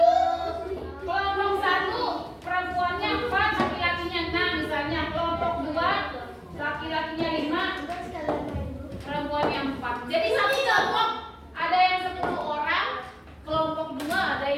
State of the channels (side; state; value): both; identical; correlation 1.00